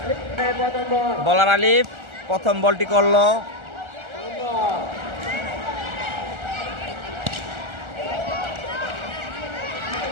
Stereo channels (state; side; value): late; left; 1.4 ms